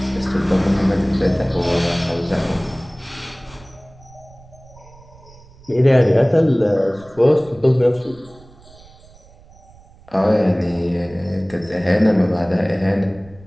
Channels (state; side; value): noise; right; rumble, 24 dB below the sound